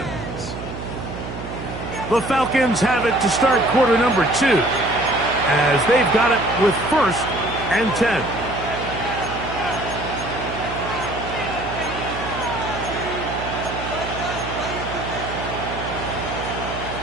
The Falcons have it to start quarter number 2 as they've got it with 1st and 10.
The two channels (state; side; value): noise; right; hum, 9 dB below the sound